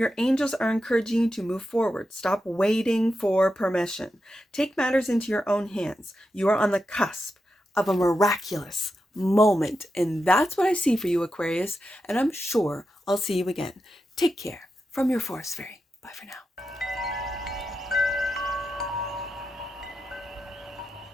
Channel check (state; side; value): normal; both; correlation 0.88